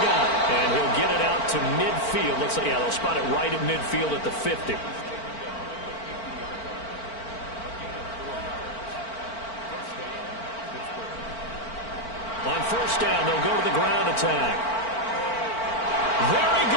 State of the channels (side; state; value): right; late; 4.4 ms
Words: And he'll get it out to midfield. Looks like, yeah, they'll spot it right at midfield at the 50. On 1st down, they'll go to the ground attack. There he